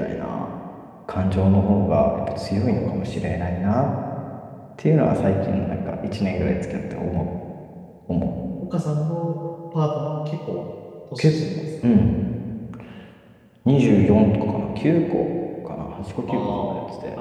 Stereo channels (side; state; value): both; identical; correlation 1.00